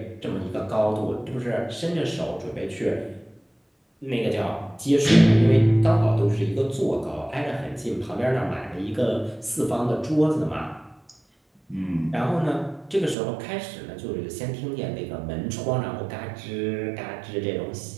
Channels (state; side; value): drops out; left; at 13.2 s